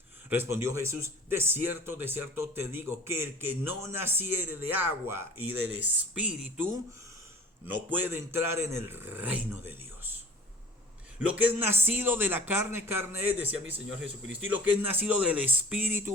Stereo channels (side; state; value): both; normal; correlation 0.43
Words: Respondió Jesús, de cierto te digo, que el que no naciere de agua y del Espíritu, no puede entrar en el reino de Dios. Lo que es nacido de la carne, carne es, decía mi Señor Jesucristo, y lo que es nacido del